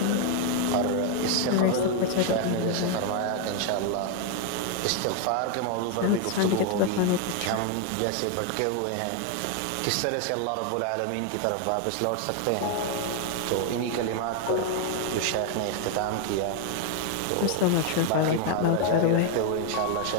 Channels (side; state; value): both; different; correlation 0.01